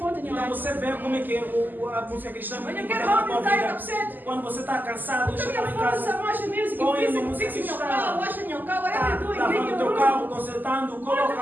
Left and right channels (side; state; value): left; late; 0.087 ms